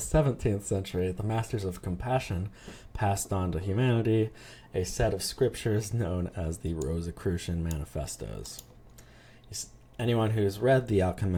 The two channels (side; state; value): both; identical; correlation 1.00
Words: 17th century, the Masters of Compassion passed on to humanity a set of scriptures known as the Rosicrucian Manifestos. Anyone who's read The